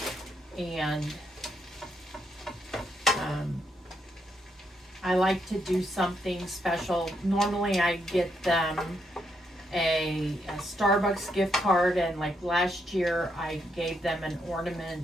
And I like to do something special. Normally I get them a Starbucks gift card, and like last year I gave them an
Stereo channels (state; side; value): normal; both; correlation 0.78